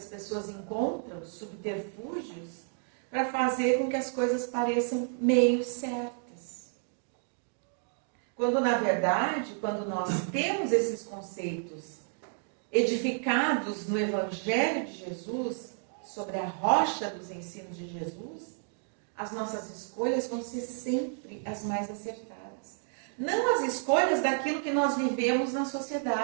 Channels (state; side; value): silent; left; 57 dB below the other